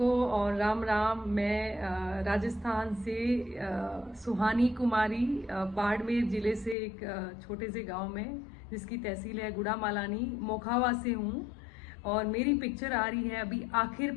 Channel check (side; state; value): right; drops out; at 6.8 s